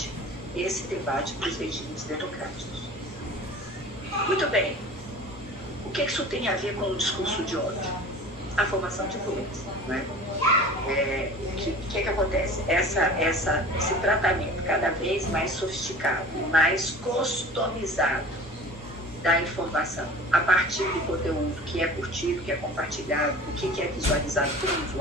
esse debate para os regimes democráticos. Muito bem. O que isso tem a ver com o discurso de ódio? A formação de influência. Né? O que acontece? Esse tratamento cada vez mais sofisticado, mais customizado da informação a partir do conteúdo que é curtido, que é compartilhado, o que é visualizado pelo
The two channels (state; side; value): normal; both; correlation 0.40